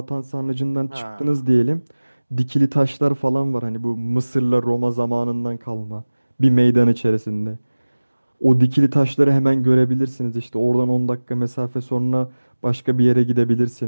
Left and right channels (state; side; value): inverted; both; correlation -1.00